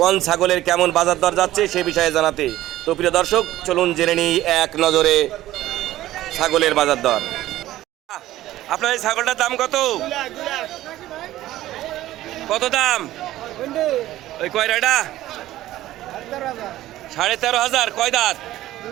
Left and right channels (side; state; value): left; quieter; 14.9 dB